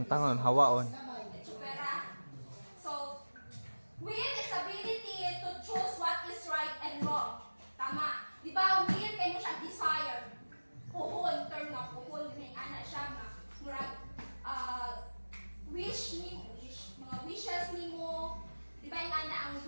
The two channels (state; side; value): inverted; both; correlation -1.00